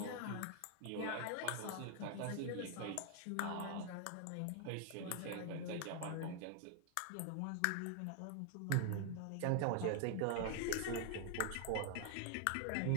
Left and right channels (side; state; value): both; different; correlation 0.00